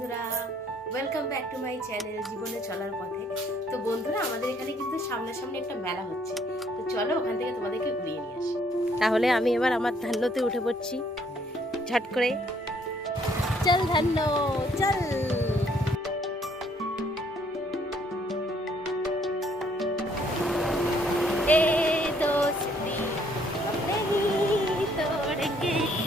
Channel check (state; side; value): normal; both; correlation 0.66